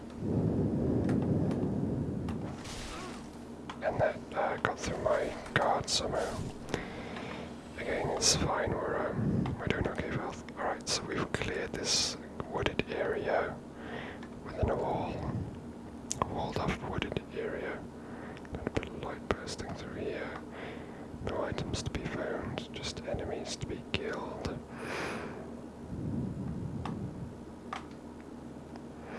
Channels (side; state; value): both; identical; correlation 1.00